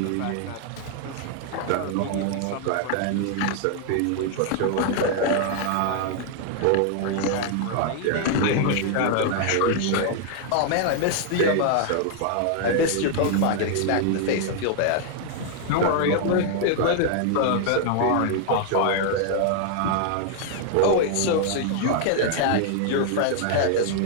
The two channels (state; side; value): different; both; correlation 0.00